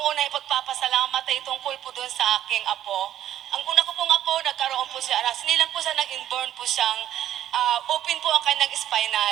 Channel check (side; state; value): left; quieter; 11.7 dB